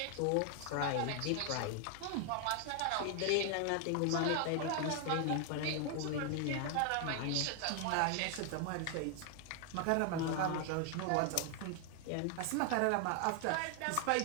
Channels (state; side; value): different; both; correlation 0.00